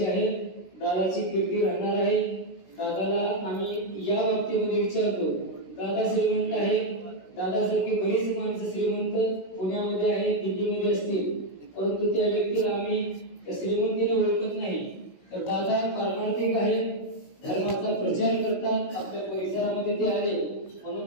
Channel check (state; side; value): late; right; 16 ms